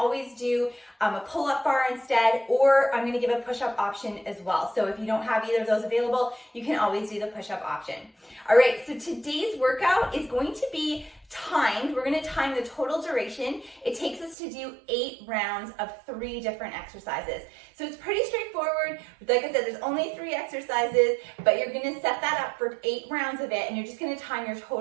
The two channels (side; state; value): left; drops out; at 14.4 s